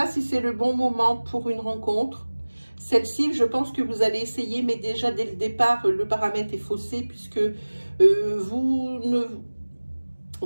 si c'est le bon moment pour une rencontre. Celle-ci, je pense que vous allez essayer, mais déjà dès le départ, le paramètre est faussé puisque vous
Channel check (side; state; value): both; inverted; correlation -1.00